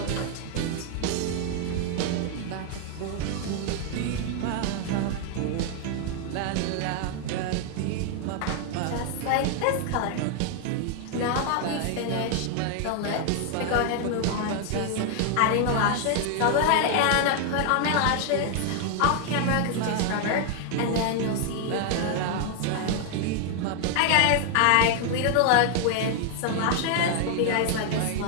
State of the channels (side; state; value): both; different; correlation 0.00